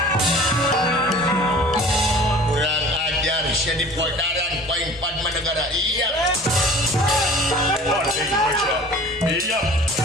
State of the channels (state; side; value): normal; both; correlation 0.44